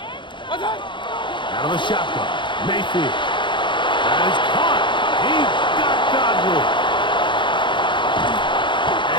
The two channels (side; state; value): right; late; 0.23 ms